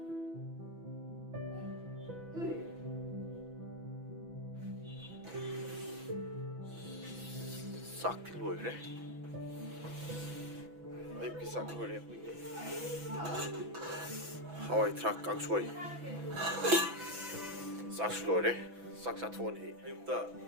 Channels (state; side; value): late; left; 6.0 ms